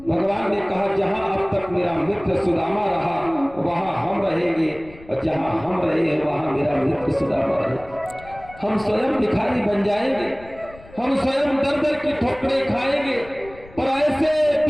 भगवान ने कहा, जहां अब तक मेरा मित्र सुदामा रहा वहां हम रहेंगे, और जहां हम रहे वहां मेरा मित्र सुदामा रहे। हम स्वयं भिखारी बन जाएंगे, हम स्वयं दर दर की ठोकरें खाएंगे, पर ऐसे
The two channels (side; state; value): left; noise; rumble, 21 dB below the sound